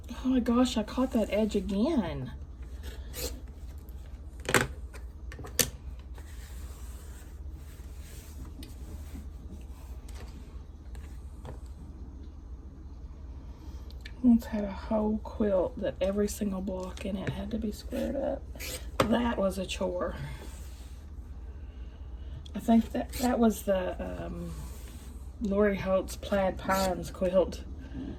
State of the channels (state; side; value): identical; both; correlation 1.00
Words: Oh my gosh, I caught that edge again. Once had a whole quilt that every single block in it had to be squared up. That was a chore. I think that was the Lori Holt's Plaid Pines quilt.